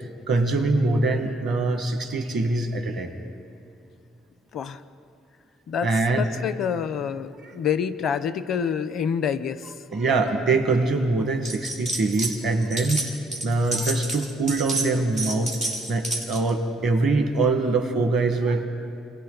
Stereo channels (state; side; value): normal; both; correlation 0.64